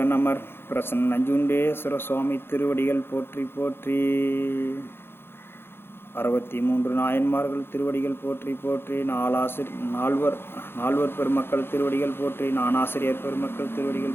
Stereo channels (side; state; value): right; late; 0.11 ms